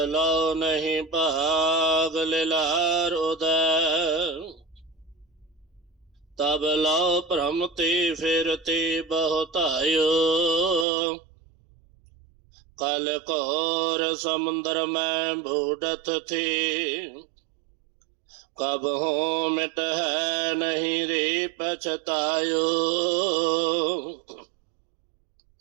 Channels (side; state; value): left; drops out; at 10.9 s